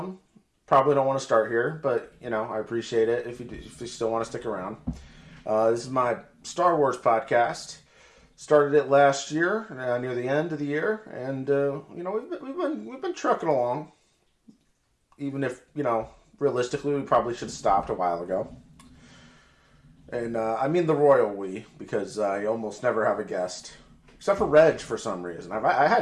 Probably don't want to start here, but, I appreciate it if you still want to stick around. This is my Star Wars podcast. Started it last year, near the end of the year, and, we've been trucking along. Even if, realistically, we probably should have stopped a while ago. And I mean the royal we, because you almost never have a guest. Except for Reg, for some reason. I had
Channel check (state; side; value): identical; both; correlation 1.00